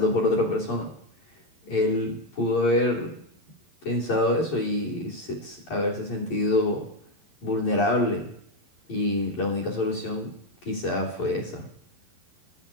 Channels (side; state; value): right; late; 11 ms